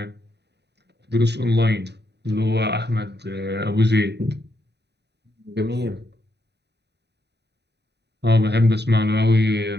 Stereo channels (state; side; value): late; left; 0.49 ms